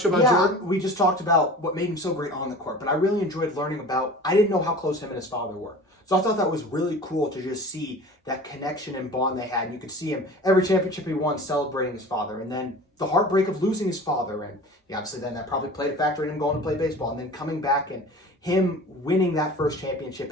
you about Jordan? We just talked about what made him so great on the court, but I really enjoyed learning about. I didn't know how close him and his father were, so I thought that was really cool to just see that connection and bond they had. And you could see him every championship he won celebrating his father, and then the heartbreak of losing his father, and obviously then that probably played a factor in him going to play baseball, and then coming back and him winning that first championship.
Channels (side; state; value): both; normal; correlation 0.39